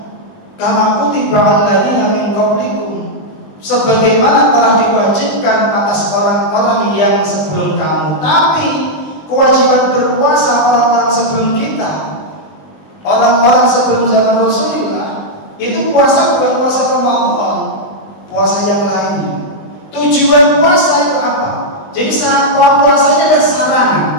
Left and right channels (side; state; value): right; late; 20 ms